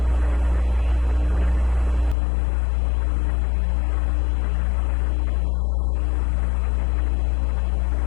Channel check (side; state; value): right; drops out; at 2.1 s